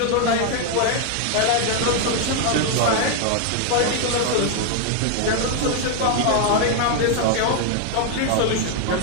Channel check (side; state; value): both; different; correlation 0.01